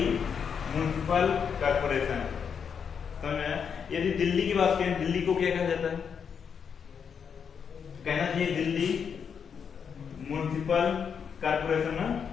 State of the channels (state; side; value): quieter; right; 6.9 dB